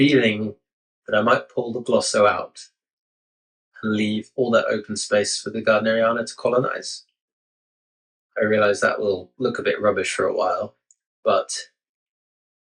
that I might pull the glosso out and leave all that open space for the gardneriana to colonize. I realize that will look a bit rubbish for a while, but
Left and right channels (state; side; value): identical; both; correlation 1.00